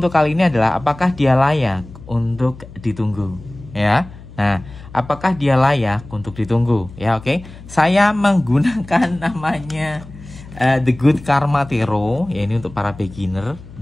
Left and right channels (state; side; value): noise; left; hum, 18 dB below the sound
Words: kali ini adalah apakah dia layak untuk ditunggu, ya. Nah, apakah dia layak untuk ditunggu, ya? Oke. Saya menggunakan namanya The Good Karma Tarot, ya, ini untuk para beginner.